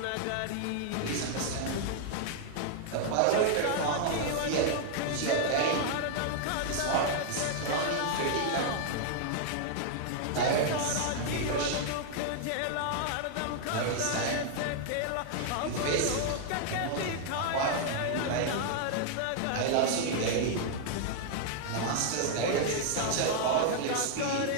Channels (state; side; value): different; both; correlation 0.00